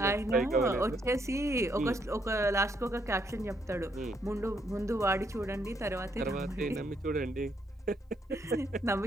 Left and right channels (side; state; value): both; normal; correlation 0.73